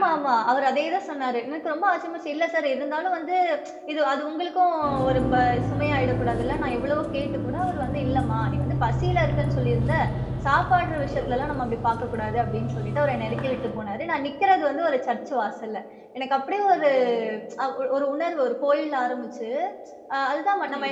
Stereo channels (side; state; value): both; identical; correlation 1.00